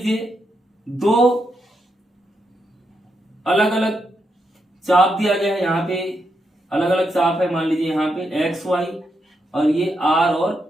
दो अलग अलग चाप दिया गया है, यहाँ पे अलग अलग चाप है, मान लीजिए यहाँ पे एक्स वाई और ये आर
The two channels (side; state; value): both; normal; correlation 0.82